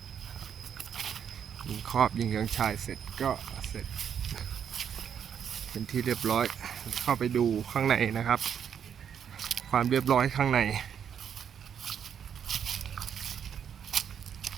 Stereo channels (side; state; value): left; quieter; 8.2 dB